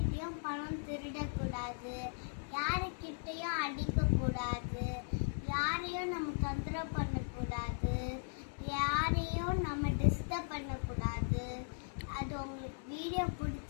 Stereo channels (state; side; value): silent; right; digital silence